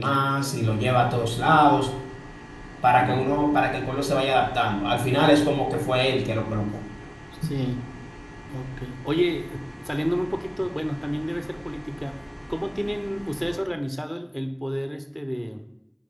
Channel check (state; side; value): identical; both; correlation 1.00